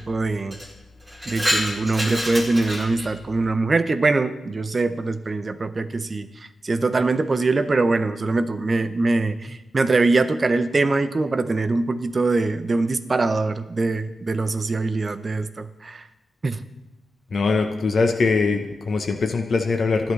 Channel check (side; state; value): both; normal; correlation 0.92